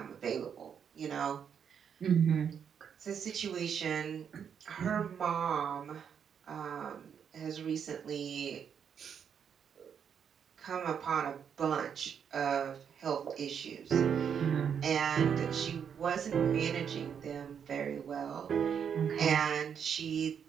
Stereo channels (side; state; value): left; quieter; 7.7 dB